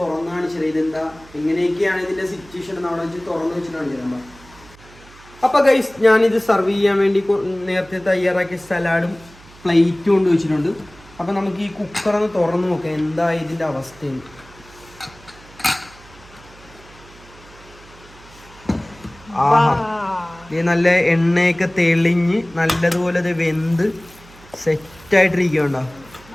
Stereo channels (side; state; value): right; noise; hum, 23 dB below the sound